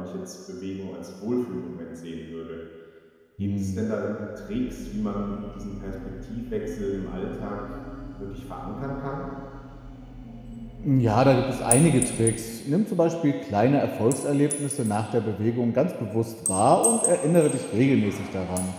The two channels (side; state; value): both; identical; correlation 1.00